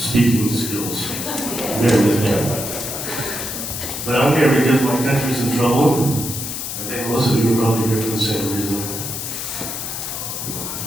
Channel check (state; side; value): noise; left; hiss, 5 dB below the sound